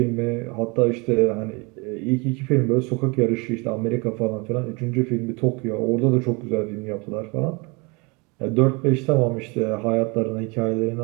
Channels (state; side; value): quieter; left; 28.5 dB